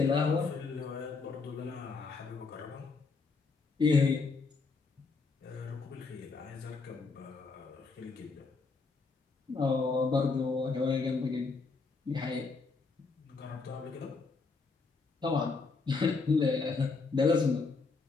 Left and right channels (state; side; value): quieter; right; 4.3 dB